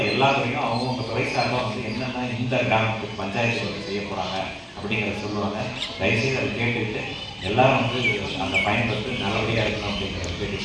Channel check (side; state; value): both; identical; correlation 1.00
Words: எல்லா துறையும் அவங்க துறை சார்பாக என்னென்ன இந்த கிராமத்துக்கு பஞ்சாயத்து செய்ய போகிறாங்க அப்படிங்கிறத சொல்லுவாங்க. தயவுசெய்து அதை கேட்டுக்கிட்டு எல்லாரும் அந்த பயன்படுத்தி நல்லபடியாக இருக்கணும் அப்படிங்கிறத